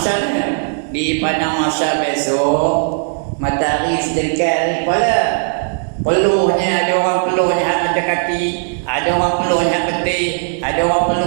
ni. Di padang masa besok, matahari sedikit hari boleh. Peluhnya, ada orang peluhnya hak mata kaki, ada orang peluhnya hak peti, ada orang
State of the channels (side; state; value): left; silent; digital silence